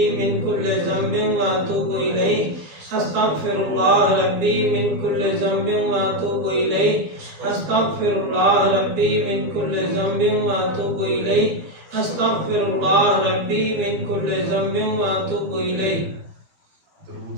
من كل ذنب وأتوب إليه أستغفر الله ربي من كل ذنب وأتوب إليه أستغفر الله ربي من كل ذنب وأتوب إليه أستغفر الله ربي من كل ذنب وأتوب إليه.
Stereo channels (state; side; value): late; left; 12 ms